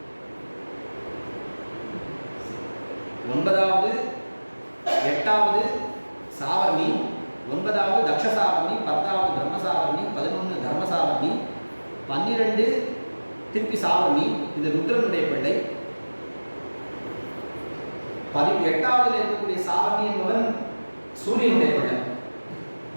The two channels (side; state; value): both; inverted; correlation -1.00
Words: 9வது 8வது சாவர்ணி, 9வது தக்ஷசாவர்ணி, 10வது பிரம்மசாவர்ணி, 11 தர்மசாவர்ணி, 12 திருப்பி சாவர்ணி. இது ருத்ரனுடைய பிள்ளை. 8வது இருக்கக்கூடிய சாவர்ணி என்பவன் சூரியனுடைய பிள்ளை.